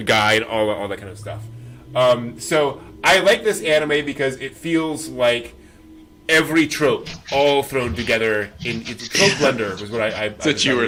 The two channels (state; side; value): identical; both; correlation 1.00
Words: guy and all that kind of stuff. So I like this anime because it feels like every trope all thrown together in it's a trope blender was what I that's what you were